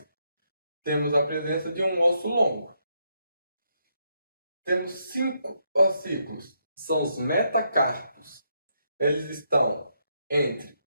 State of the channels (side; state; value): both; inverted; correlation -0.78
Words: temos a presença de um osso longo. Temos 5 ossículos, são os metacarpos. Eles estão entre